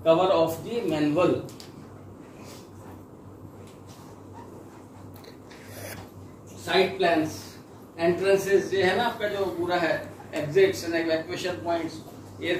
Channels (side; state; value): both; identical; correlation 1.00